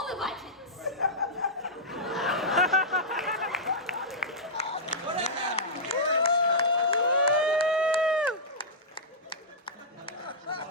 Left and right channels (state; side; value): normal; both; correlation -0.12